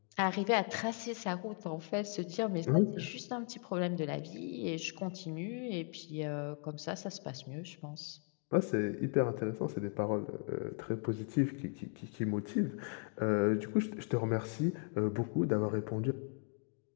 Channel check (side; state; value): right; quieter; 39.2 dB